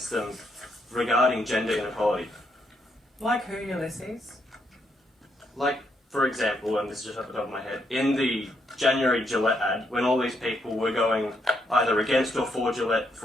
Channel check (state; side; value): normal; both; correlation 0.76